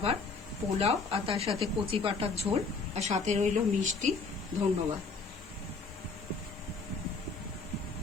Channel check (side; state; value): right; quieter; 4.3 dB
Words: পোলাও, আর তার সাথে কচি পাঁঠার ঝোল, আর সাথে রইল মিষ্টি। ধন্যবাদ।